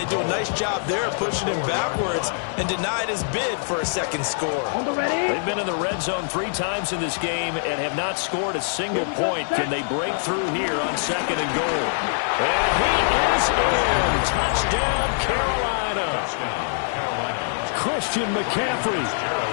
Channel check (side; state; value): right; silent; digital silence